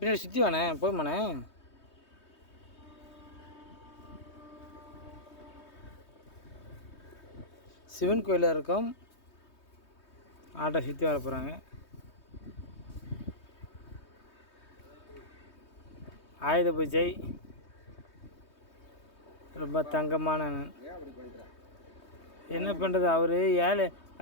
சுற்றி வானே போய்மாண்ணே. சிவன் கோயிலில் இருக்கோம். ஆட்டோ சுற்றி வர போகிறாங்க. ஆயுத பூஜை ரொம்ப தங்கமான. என்ன பண்ணுறது, அவர் ஏழை,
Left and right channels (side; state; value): right; late; 3.2 ms